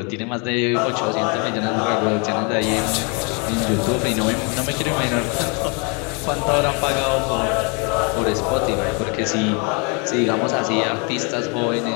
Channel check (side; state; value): right; quieter; 33.5 dB